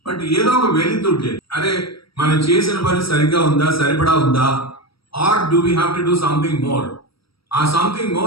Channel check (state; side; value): late; right; 0.75 ms